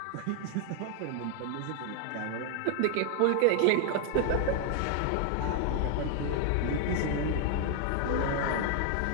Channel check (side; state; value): both; different; correlation 0.00